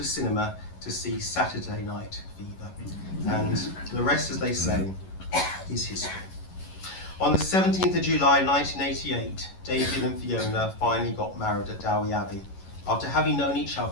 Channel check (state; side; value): late; right; 11 ms